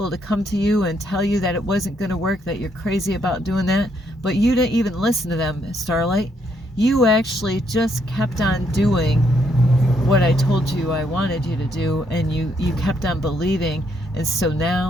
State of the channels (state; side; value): normal; both; correlation 0.73